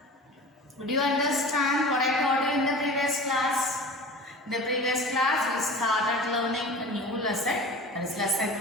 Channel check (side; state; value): both; normal; correlation 0.37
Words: Did you understand what I taught you in the previous class? In the previous class we started learning a new lesson, that is lesson